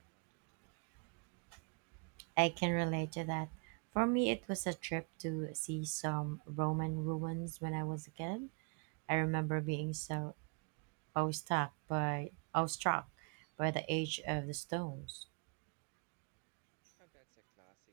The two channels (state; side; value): quieter; left; 34.9 dB